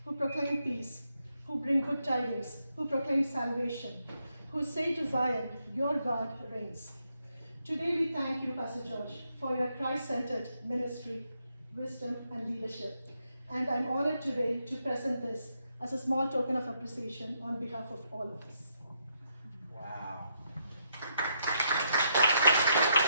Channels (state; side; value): inverted; both; correlation -0.79